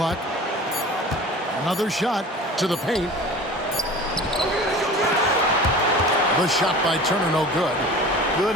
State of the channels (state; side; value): normal; both; correlation 0.39